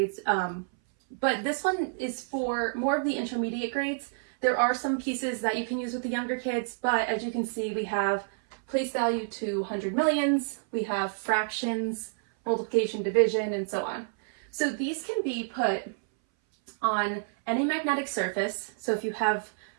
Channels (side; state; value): left; silent; 59 dB below the other